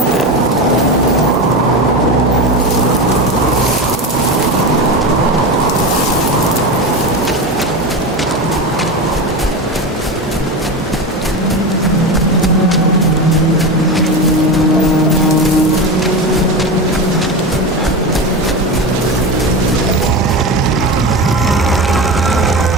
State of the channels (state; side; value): normal; both; correlation 0.22